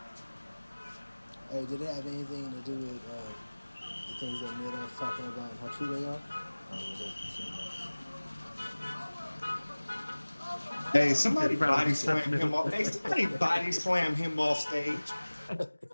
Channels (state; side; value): inverted; both; correlation -1.00